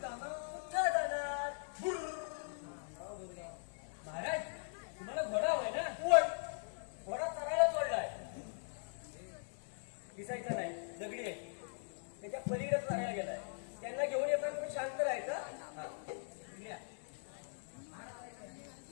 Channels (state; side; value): silent; right; digital silence